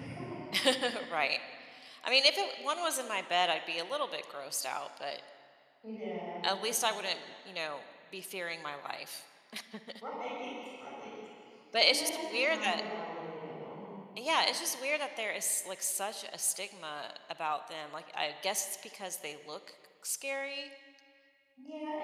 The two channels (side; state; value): both; identical; correlation 1.00